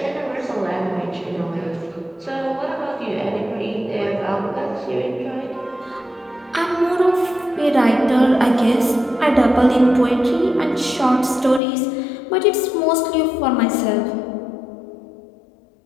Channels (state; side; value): drops out; right; at 11.6 s